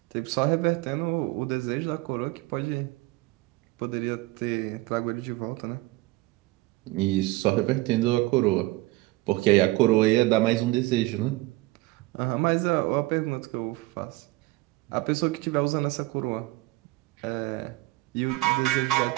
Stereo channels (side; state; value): left; quieter; 20.7 dB